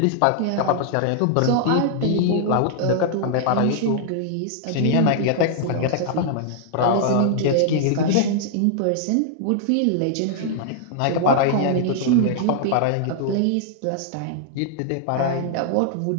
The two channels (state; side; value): different; both; correlation -0.01